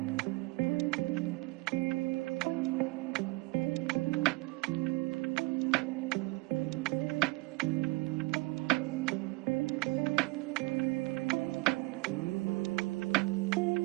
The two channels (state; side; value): quieter; left; 24.6 dB